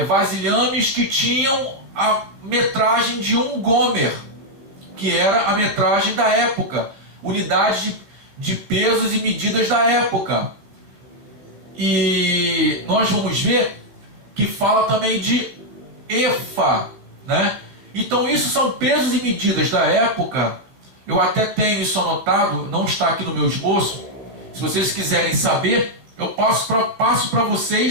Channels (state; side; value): late; left; 15 ms